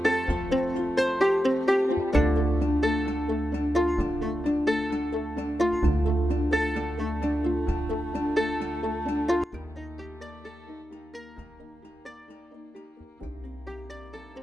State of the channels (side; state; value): both; normal; correlation 0.90